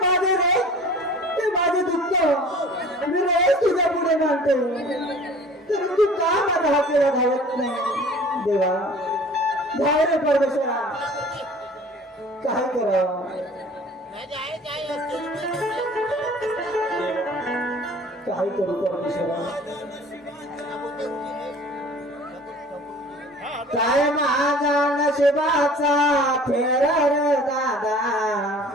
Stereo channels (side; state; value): both; normal; correlation 0.46